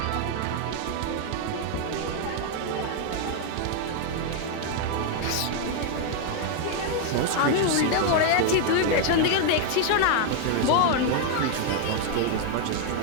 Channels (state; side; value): different; both; correlation 0.00